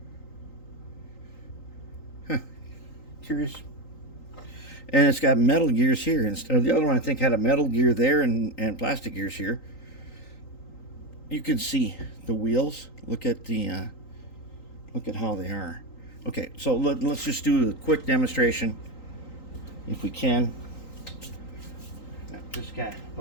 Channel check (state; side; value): late; right; 3.9 ms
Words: Huh, curious. And it's got metal gears here instead of the other one. I think had a metal gear there and plastic gears here. You can see the wheels. Look at the look at how they are. Okay, so let's just do a quick demonstration, if we can. Not this guy,